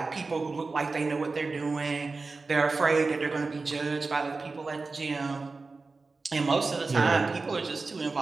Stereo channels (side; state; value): left; quieter; 3.9 dB